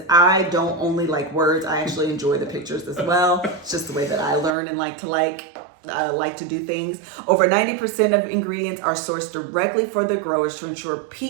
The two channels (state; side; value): drops out; left; at 4.5 s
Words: I don't only like words. I actually enjoy the pictures as well. It's just the way that I learn and like to do things. Over 90% of ingredients are sourced directly for the growers to ensure